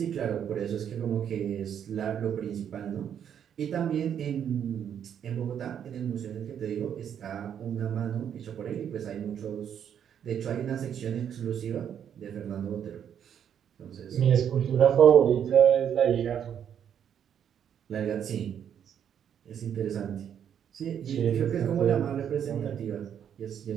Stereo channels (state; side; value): quieter; left; 8.9 dB